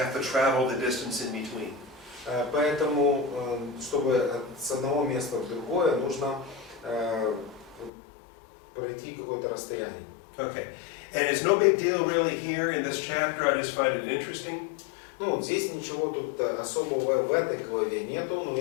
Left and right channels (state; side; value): drops out; right; at 7.9 s